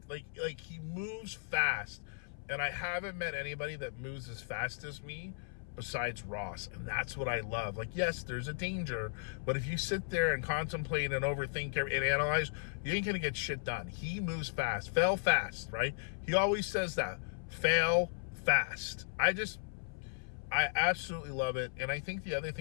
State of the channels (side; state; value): right; silent; 54 dB below the other